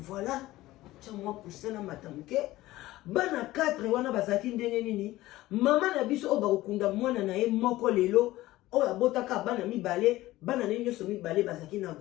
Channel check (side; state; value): right; quieter; 17.0 dB